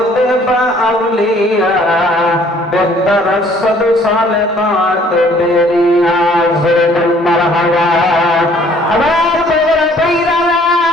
বা আউলিয়া বেহতর সদ সালেহাত বেরিয়া জুল মারহাবা। আবার বড় পীরা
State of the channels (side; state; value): both; normal; correlation 0.58